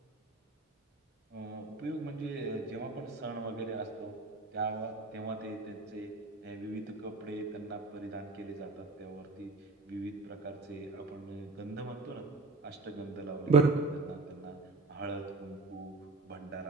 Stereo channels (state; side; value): quieter; left; 3.5 dB